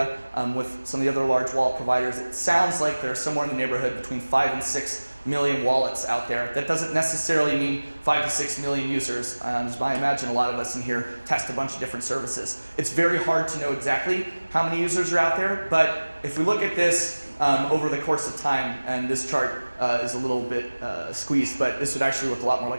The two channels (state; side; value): inverted; both; correlation -1.00